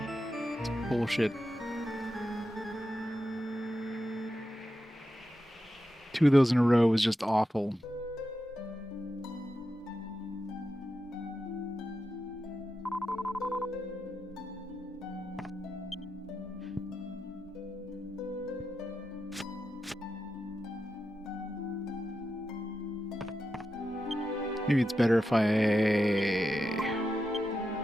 Bullshit. 2 of those in a row was just awful. Maybe it's better if I...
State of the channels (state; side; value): normal; both; correlation 0.88